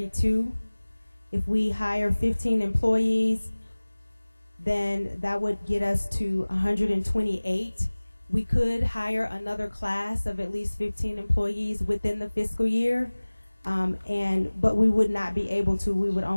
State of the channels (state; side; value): inverted; both; correlation -1.00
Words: If we hire 15 employees, then that would get us to 128. We could hire another class of at least 15 employees within the fiscal year, but we would not be able to. We would